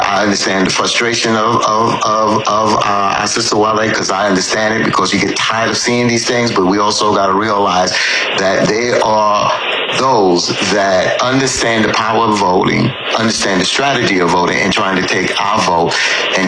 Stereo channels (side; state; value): both; identical; correlation 1.00